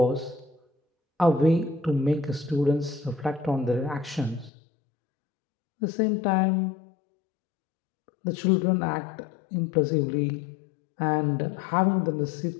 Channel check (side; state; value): right; drops out; at 4.5 s